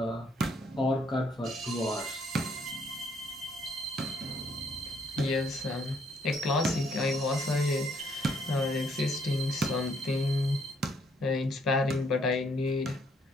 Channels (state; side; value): normal; both; correlation 0.68